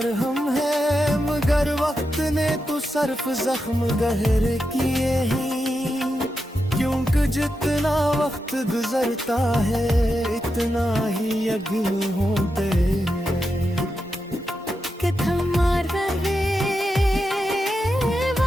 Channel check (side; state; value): both; normal; correlation 0.87